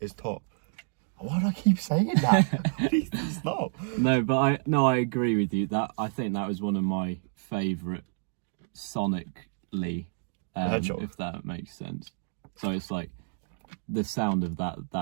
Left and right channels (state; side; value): silent; left; digital silence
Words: top. Why do I keep saying that? Please stop. No, but I agree with you. That I think that was one of my favourite sonically, if that makes sense. So it's like the sound of